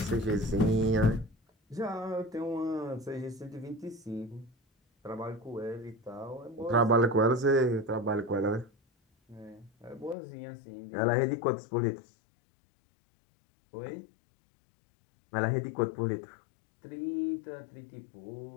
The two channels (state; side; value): drops out; right; at 10.2 s